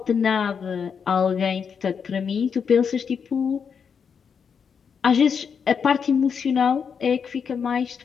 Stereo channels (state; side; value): quieter; right; 6.6 dB